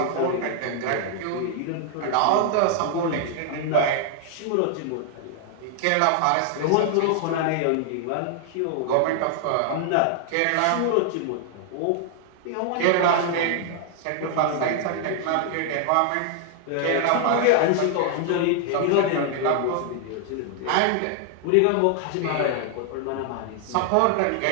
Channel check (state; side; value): different; both; correlation 0.00